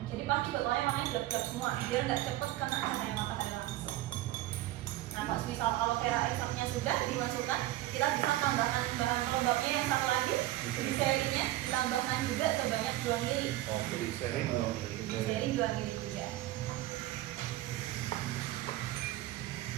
Jadi pasti botolnya warnanya gelap-gelap semua, biar nggak cepet kena cahaya matahari langsung. Nah, kalau misal aloe vera ekstraknya sudah dimasukkan, kita bisa tambahkan bahan pelembabnya yang satu lagi, gliserinnya ditambahkan juga sebanyak 2 mili. Oh, Glycerin 2 mili. Gliserin 2 mili juga.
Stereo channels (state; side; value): quieter; left; 16.0 dB